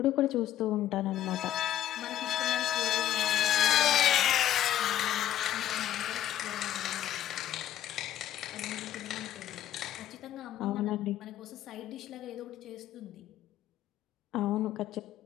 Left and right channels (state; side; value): quieter; right; 12.1 dB